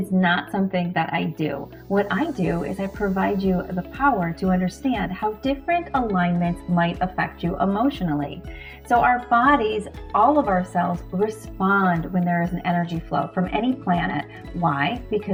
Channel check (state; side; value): identical; both; correlation 1.00